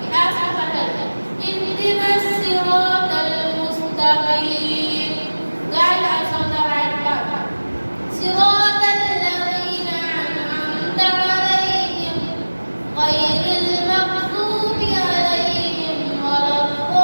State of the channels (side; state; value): both; inverted; correlation -1.00